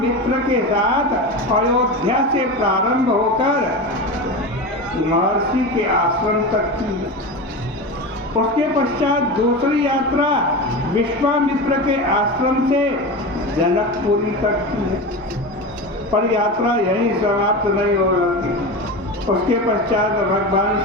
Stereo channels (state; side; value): normal; both; correlation 0.24